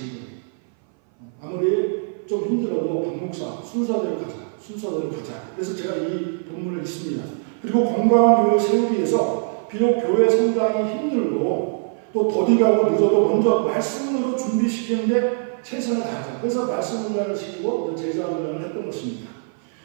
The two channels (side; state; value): left; silent; 59 dB below the other